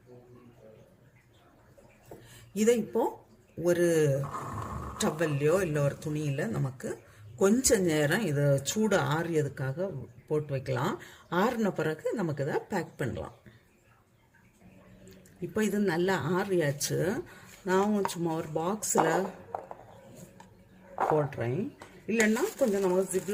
இதை இப்போ ஒரு டவல்லையோ இல்லை ஒரு துணியில் நமக்கு கொஞ்ச நேரம் இதை சூடு ஆறியதுக்காக போட்டு வைக்கலாம். ஆறின பிறகு நமக்கு இதை பேக் பண்ணலாம். இப்போ இது நல்லா ஆறியாச்சு. நான் சும்மா ஒரு பாக்ஸில் போடுறேன். இல்லைன்னா கொஞ்சம் நம்ம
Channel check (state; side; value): identical; both; correlation 1.00